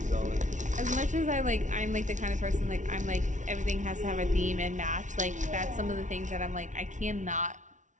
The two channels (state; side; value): late; left; 0.36 ms